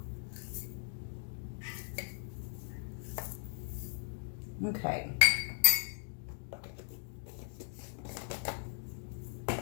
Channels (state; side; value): silent; right; digital silence